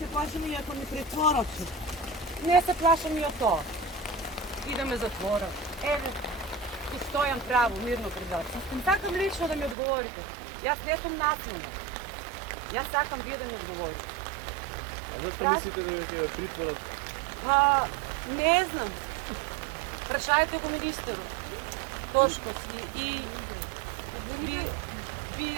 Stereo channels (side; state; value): left; drops out; at 9.8 s